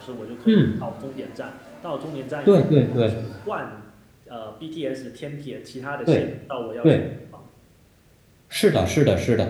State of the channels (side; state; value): both; identical; correlation 1.00